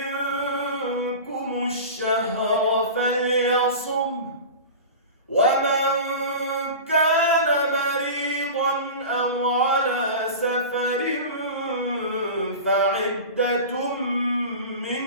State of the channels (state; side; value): inverted; both; correlation -0.32